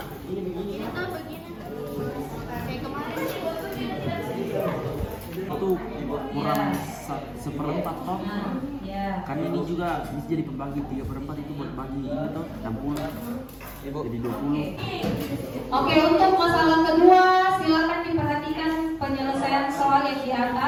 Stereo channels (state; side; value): identical; both; correlation 1.00